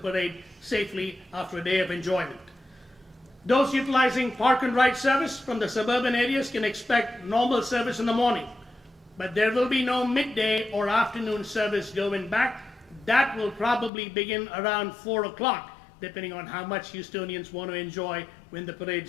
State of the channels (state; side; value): drops out; right; at 13.9 s